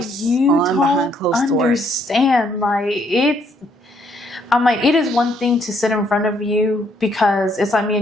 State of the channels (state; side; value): normal; both; correlation 0.70